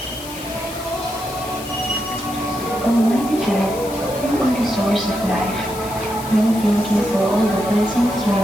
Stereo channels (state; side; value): noise; left; hiss, 14 dB below the sound